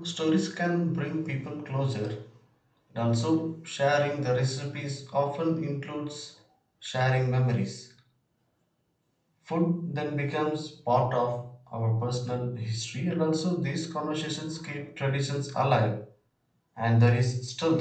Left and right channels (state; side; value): identical; both; correlation 1.00